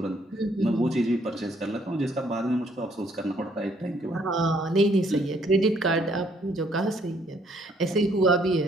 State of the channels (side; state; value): both; normal; correlation 0.66